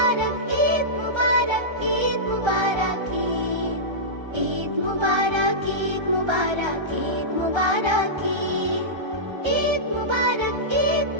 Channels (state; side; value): late; left; 1.3 ms